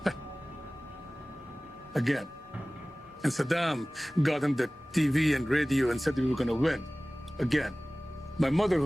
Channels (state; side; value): normal; both; correlation 0.98